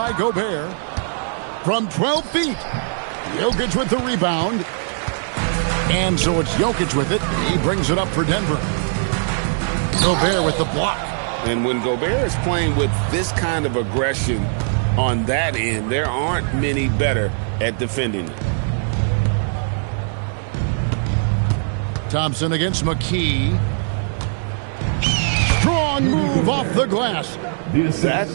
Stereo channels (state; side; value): silent; left; digital silence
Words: Gobert. From 12 feet. Jokic with the rebound. And so it's Jokic with it. He brings it up for Denver. Gobert with the block. And when Gobert is playing with this kind of aggression on that end, there aren't many better at defending it. Thompson against McKee. Strong move off the glass. That